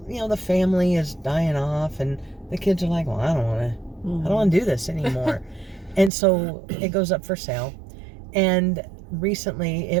you know, the family is dying off and the kids are like, well, I don't want to do this anymore. And so it goes up for sale. And recently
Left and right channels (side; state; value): left; drops out; at 6.1 s